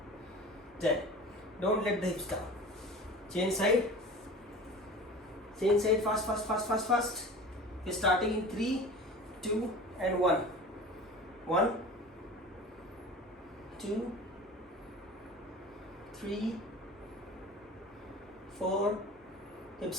10. Don't let the hips down. Change side, fast. We're starting in 3, 2, and 1. 1, 2, 3, 4, hips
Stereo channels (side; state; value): both; normal; correlation 0.38